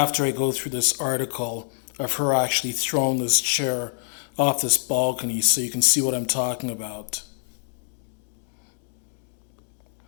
I go through this article of her actually throwing this chair off this balcony so you can see what I'm talking about.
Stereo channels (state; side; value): silent; right; digital silence